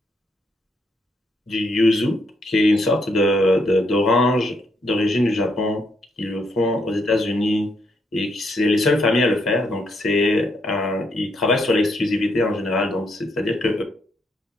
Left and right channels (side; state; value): both; normal; correlation 0.76